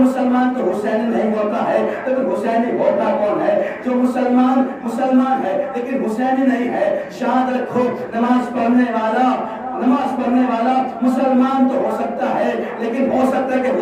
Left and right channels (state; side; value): identical; both; correlation 1.00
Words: مسلمان تو حسینی نہیں ہوتا ہے، لیکن حسینی ہوتا کون ہے؟ جو مسلمان ہے لیکن حسینی نہیں ہے۔ شاد رکھو، نماز پڑھنے والا مسلمان تو ہو سکتا ہے، لیکن ہو سکتا ہے کہ